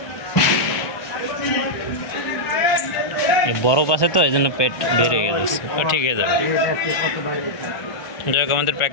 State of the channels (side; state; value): right; late; 1.2 ms